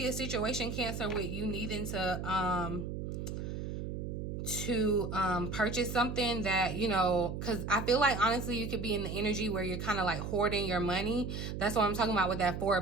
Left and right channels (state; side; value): noise; right; hum, 5 dB below the sound